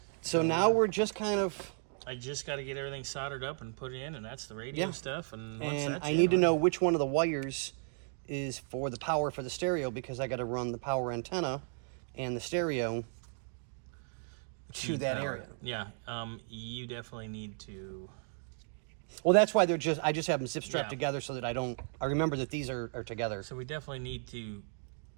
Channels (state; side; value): silent; left; 55 dB below the other